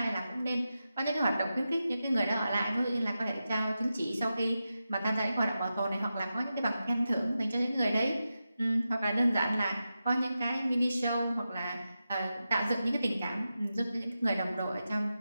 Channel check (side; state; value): both; inverted; correlation -0.91